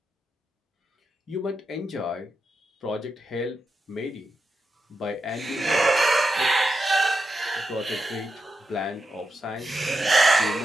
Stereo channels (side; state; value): both; normal; correlation 0.87